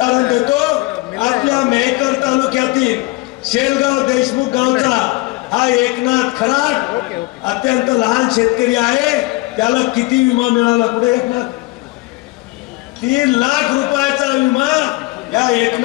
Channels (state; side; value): quieter; right; 22.4 dB